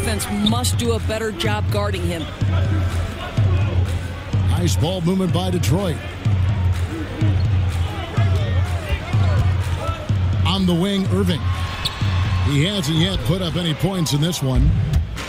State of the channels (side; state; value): both; identical; correlation 1.00